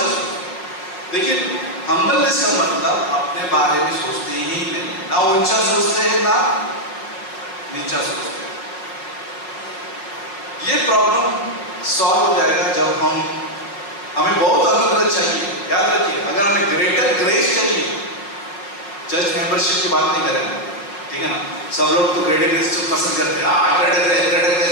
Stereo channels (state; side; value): late; right; 5.4 ms